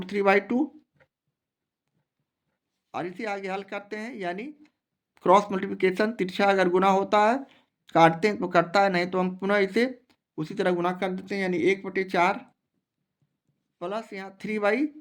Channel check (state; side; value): identical; both; correlation 1.00